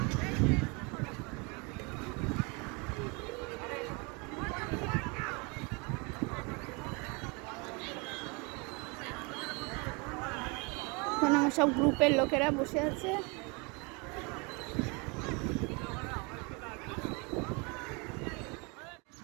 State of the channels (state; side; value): quieter; left; 30.3 dB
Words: আমার সব গ্রুপের লোকেরা বসে আছে।